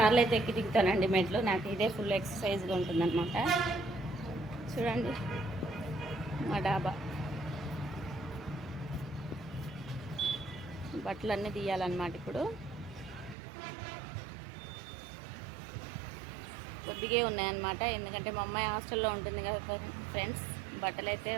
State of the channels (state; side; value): drops out; left; at 13.4 s